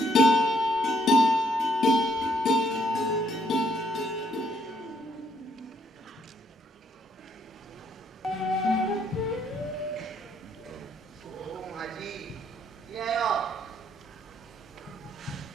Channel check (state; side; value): normal; both; correlation 0.71